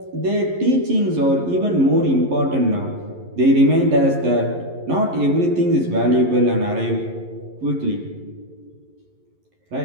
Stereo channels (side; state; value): left; late; 11 ms